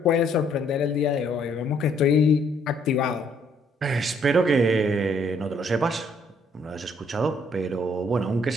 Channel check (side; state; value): both; normal; correlation 0.66